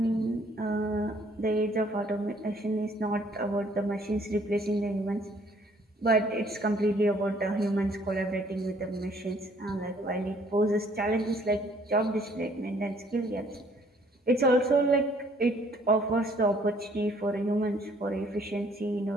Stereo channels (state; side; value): normal; both; correlation 0.62